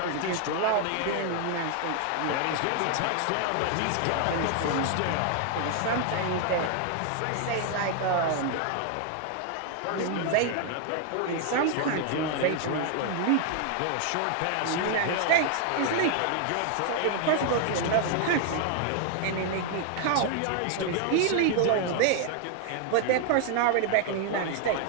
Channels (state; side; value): different; both; correlation 0.00